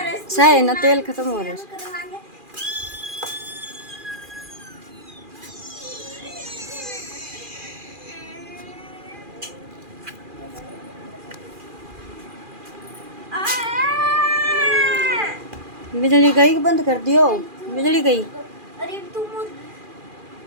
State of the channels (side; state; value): left; late; 2.4 ms